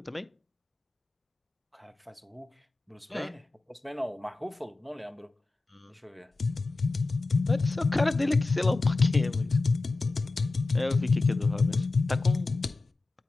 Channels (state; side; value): quieter; right; 3.4 dB